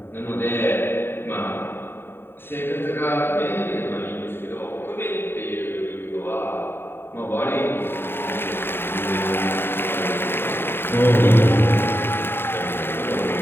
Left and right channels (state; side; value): late; right; 0.11 ms